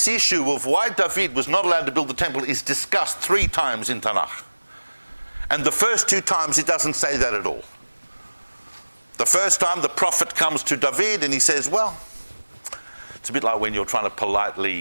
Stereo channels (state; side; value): inverted; both; correlation -1.00